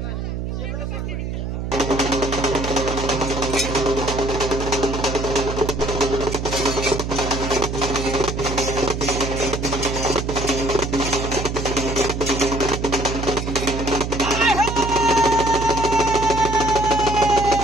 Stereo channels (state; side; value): noise; right; hum, 4 dB below the sound